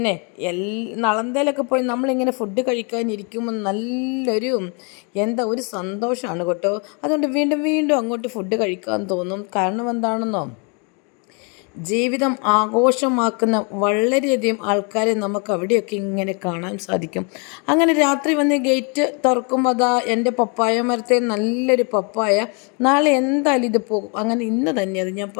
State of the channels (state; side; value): quieter; right; 35.1 dB